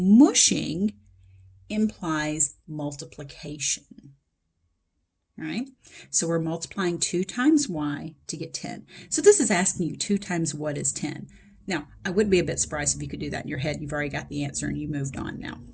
implies multiplication. All right, so we're multiplying 2 times y to get 10. So this is asking you 2 times what is 10. Now, I would be a bit surprised if you could do that in your head. You've already got the answer and you moved on now.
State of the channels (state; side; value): identical; both; correlation 1.00